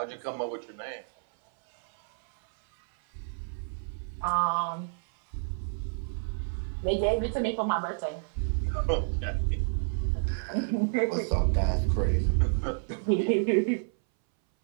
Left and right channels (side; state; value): left; silent; 58 dB below the other